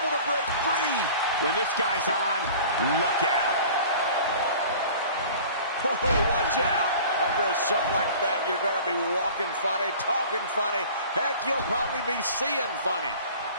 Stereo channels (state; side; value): inverted; both; correlation -0.44